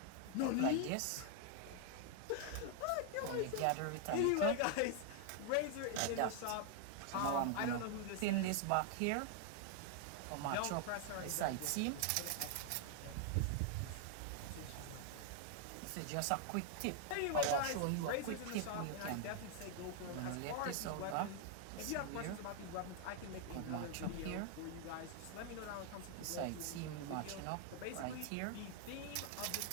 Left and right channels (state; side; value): different; both; correlation 0.00